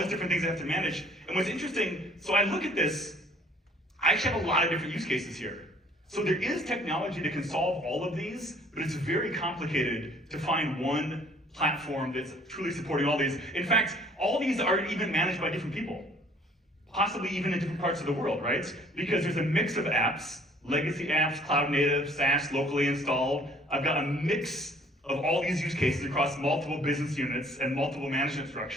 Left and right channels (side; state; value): both; normal; correlation 0.57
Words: these different things I have to manage. And what's interesting, so I look at this, I actually have a lot of different use cases here. So there is technology that can solve all of these, but it's very complicated to find one platform that's truly supporting all these. In fact, all these are even managed by different people, possibly even in different parts of the world, right? Because there's a mix of apps, legacy apps, cloud native, SaaS, locally installed. I've got a mix of all these use cases across multiple business units and multiple management